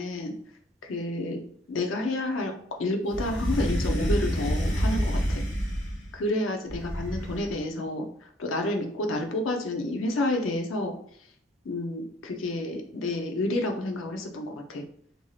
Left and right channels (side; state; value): both; normal; correlation 0.62